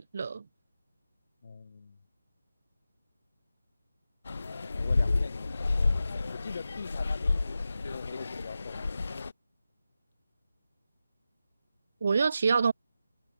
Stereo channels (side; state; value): both; inverted; correlation -0.91